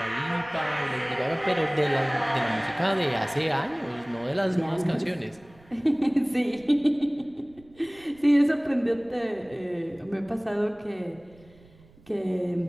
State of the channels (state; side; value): noise; right; rumble, 27 dB below the sound